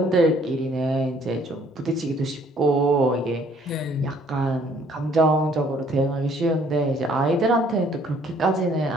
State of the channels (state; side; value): normal; both; correlation 0.61